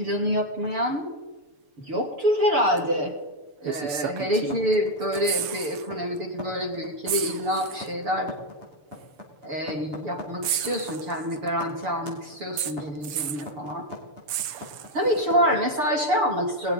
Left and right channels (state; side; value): late; left; 6.8 ms